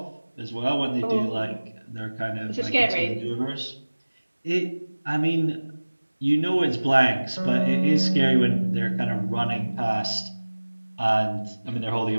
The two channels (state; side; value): inverted; both; correlation -1.00